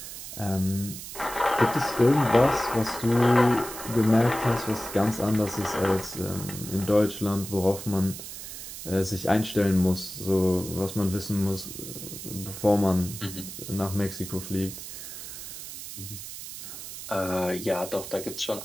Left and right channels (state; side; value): noise; right; hiss, 10 dB below the sound